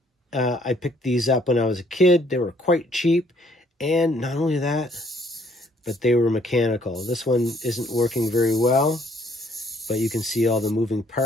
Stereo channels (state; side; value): normal; both; correlation 0.63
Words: I picked these up when I was a kid. They were quite cheap, and not only that, but they were mechanical. This one isn't working very well, but you can see all the moving